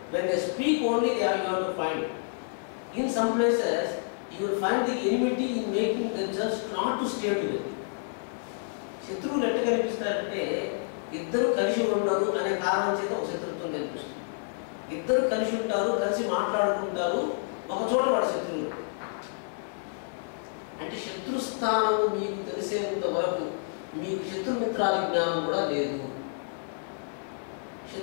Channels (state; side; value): silent; right; 55 dB below the other